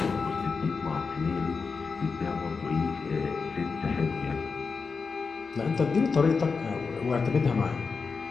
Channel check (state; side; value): quieter; right; 4.9 dB